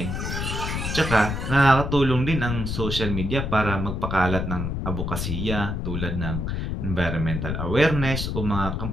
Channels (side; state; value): left; noise; rumble, 3 dB below the sound